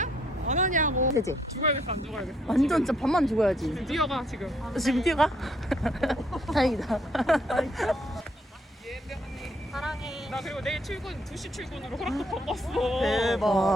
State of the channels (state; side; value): normal; both; correlation 0.69